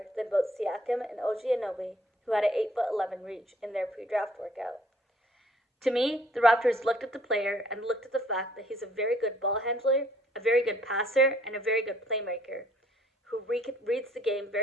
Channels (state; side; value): normal; both; correlation 0.61